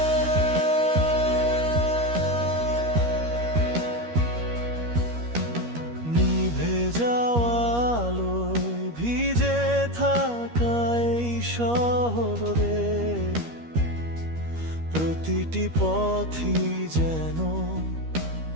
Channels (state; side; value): late; left; 13 ms